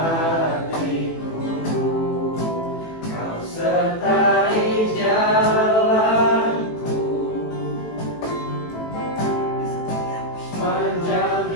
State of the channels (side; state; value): right; late; 18 ms